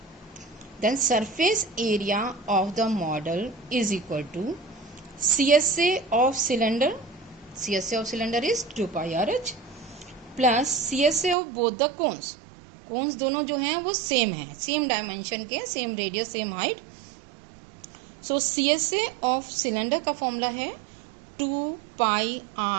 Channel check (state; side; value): drops out; left; at 11.4 s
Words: Then surface area of the model is equal to CSA of cylinder, CSA of cylinder is 2 pi r h plus CSA of both the cones, cones दोनों जो हैं वो same है, same dimension के, same radius same height. So CSA of cylinder का formula है